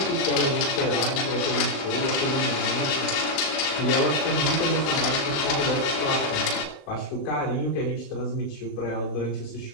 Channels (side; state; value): right; late; 20 ms